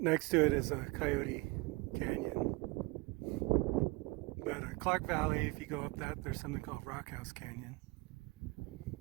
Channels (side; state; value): left; quieter; 24.7 dB